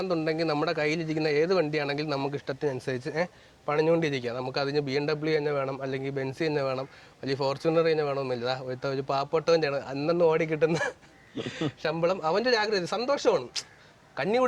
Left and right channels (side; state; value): both; identical; correlation 1.00